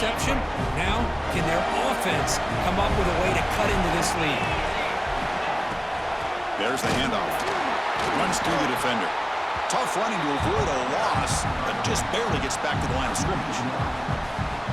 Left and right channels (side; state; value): both; identical; correlation 1.00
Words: Now, can their offense come up with a way to cut into this lead? There's the handoff. Runs through the defender. Tough running to avoid a loss, but just barely gets back to the line of scrimmage.